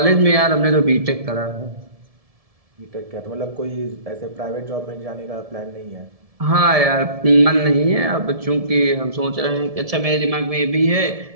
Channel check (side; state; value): left; late; 1.7 ms